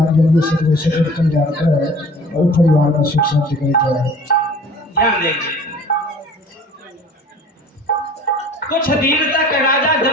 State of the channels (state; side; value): normal; both; correlation 0.47